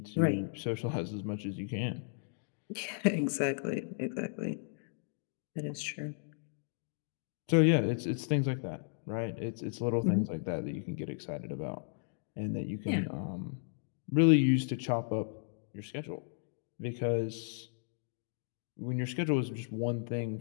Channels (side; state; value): right; silent; digital silence